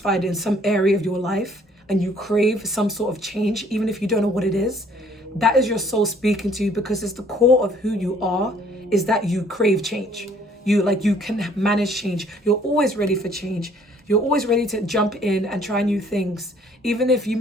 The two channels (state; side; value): normal; both; correlation 0.59